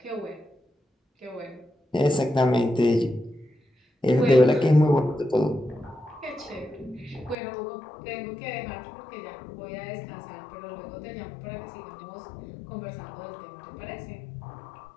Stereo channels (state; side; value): drops out; right; at 7.4 s